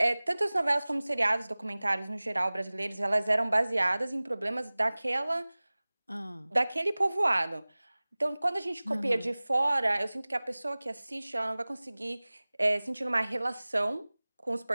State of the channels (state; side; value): inverted; both; correlation -0.99